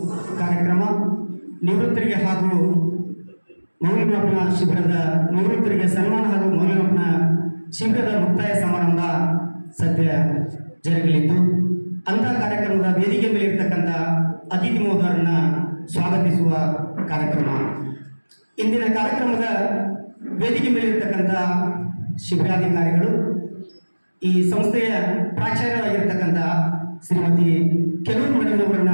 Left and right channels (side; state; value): both; inverted; correlation -1.00